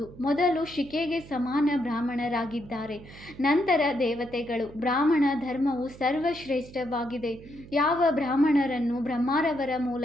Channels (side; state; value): right; noise; hum, 18 dB below the sound